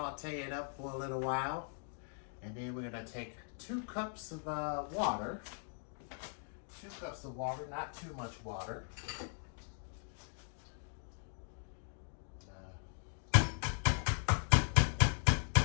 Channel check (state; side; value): silent; right; 52 dB below the other